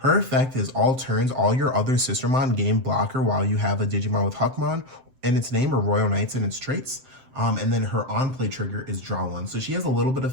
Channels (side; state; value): left; late; 7.7 ms